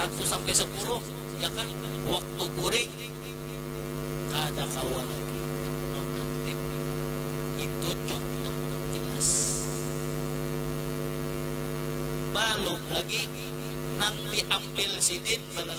sampai 10, ya kan? Waktu kuring ada kawanan. Itu contoh jelas. Balok lagi nang diambil sidin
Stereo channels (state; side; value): identical; both; correlation 1.00